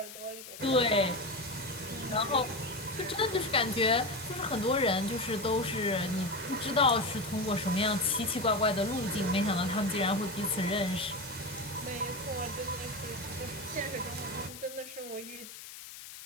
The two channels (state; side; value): noise; left; hiss, 13 dB below the sound